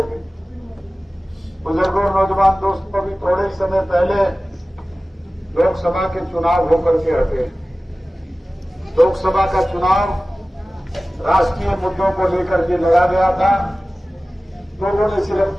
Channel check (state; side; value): normal; both; correlation 0.97